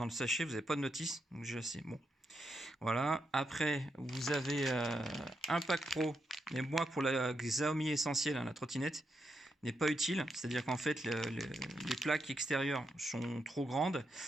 sachet, vous n'avez pas de notice, donc déjà c'est bon. Voilà. Après, vous avez un pack pro, mais moi pour la Xiaomi Essentiel, hein, la trottinette, n'est pas utile. C'est-à-dire qu'en fait, les plaques extérieures sont trop grandes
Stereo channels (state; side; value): normal; both; correlation 0.83